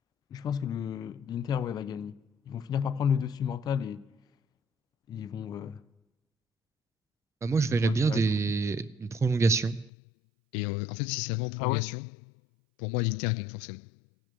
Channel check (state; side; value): drops out; right; at 9.9 s